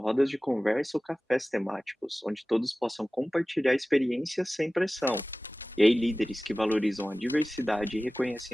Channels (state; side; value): normal; both; correlation 0.97